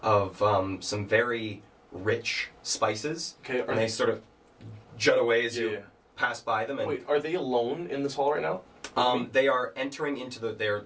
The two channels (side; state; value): both; identical; correlation 1.00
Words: of some very rich spices. Okay, And they sort of jut away as you Yeah. pass by them. And Wait, are they alone in this hall right now? They are entering into they're